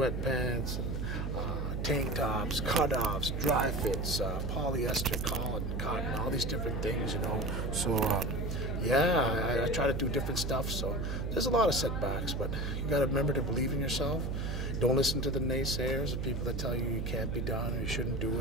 and tank tops, cutoffs, dry fits, polyester, cotton, all these different things, you know. So, yeah, I try to do different stuff, so there's a lot of setbacks, but you got to remember to believe in yourself. Don't listen to the naysayers, the people that tell you you can't be done or you shouldn't do it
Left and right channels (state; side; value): noise; right; hum, 2 dB below the sound